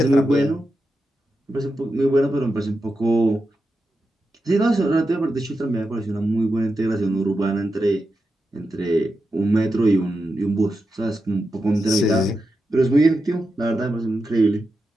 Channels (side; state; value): both; normal; correlation 0.89